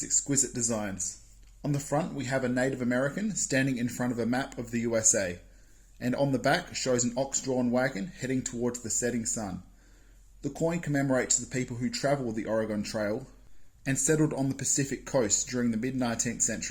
exquisite designs. On the front we have a Native American standing in front of a map of the USA, and on the back shows an ox-drawn wagon heading towards the setting sun. The coin commemorates the people who travelled the Oregon Trail and settled on the Pacific coast during the mid-19th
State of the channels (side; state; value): both; identical; correlation 1.00